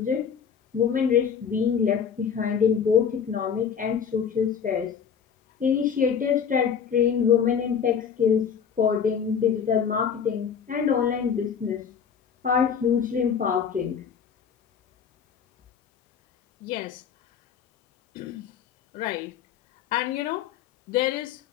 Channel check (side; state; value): right; quieter; 7.3 dB